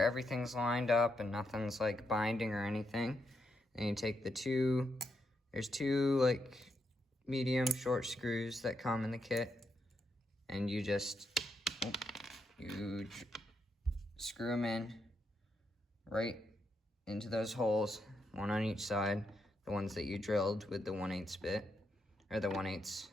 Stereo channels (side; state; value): both; normal; correlation 0.80